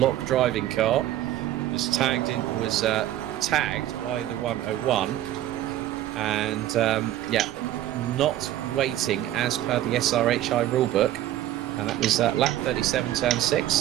driving car, was tagged by the 101, and yeah, not waiting as per the SRHI rulebook, and that was lap 37, turn 6.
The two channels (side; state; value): left; quieter; 13.2 dB